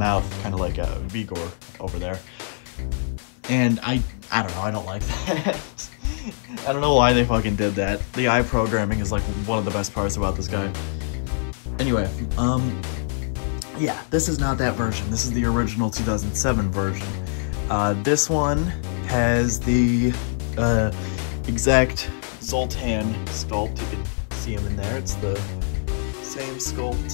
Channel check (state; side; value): silent; right; 63 dB below the other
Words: kind of like a Vigor over there. And I don't know, I don't like that. I don't know why they fucking did that. The eye programming is like one of the best parts about this guy. Anyway, yeah, this is not that version. This is the original 2007 version. This one has the exact Zoltan sculpt. You can see him in there. It's the same